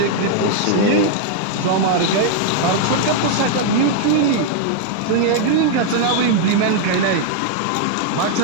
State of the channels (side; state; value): both; different; correlation -0.01